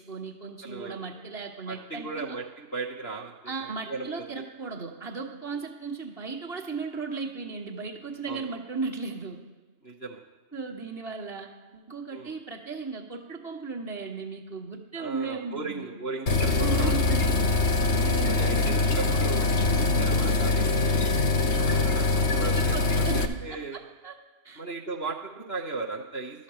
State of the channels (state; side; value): late; right; 3.3 ms